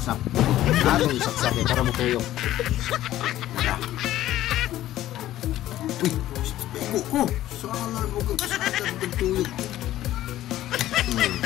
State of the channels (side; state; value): right; quieter; 13.9 dB